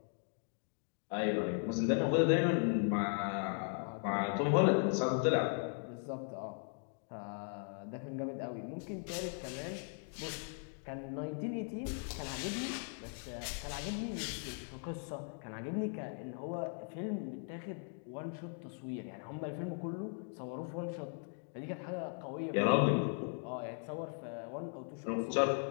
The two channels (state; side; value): silent; right; 52 dB below the other